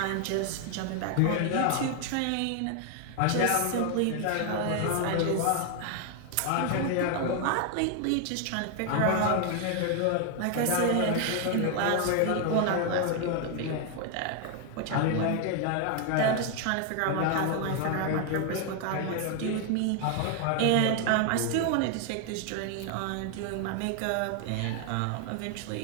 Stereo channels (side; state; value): both; different; correlation 0.00